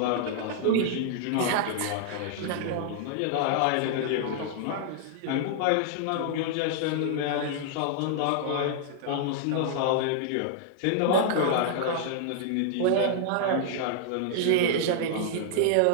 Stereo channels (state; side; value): different; both; correlation -0.01